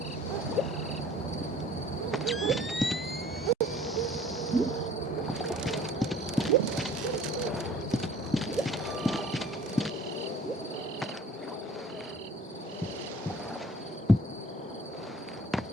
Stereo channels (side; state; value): both; normal; correlation 0.51